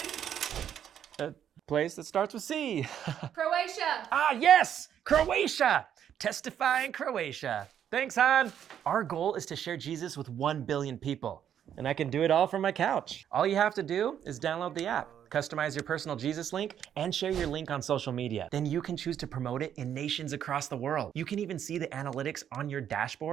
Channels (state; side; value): quieter; left; 9.5 dB